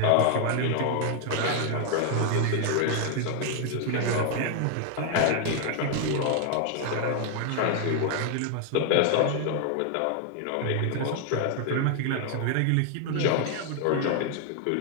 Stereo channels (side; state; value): both; different; correlation 0.00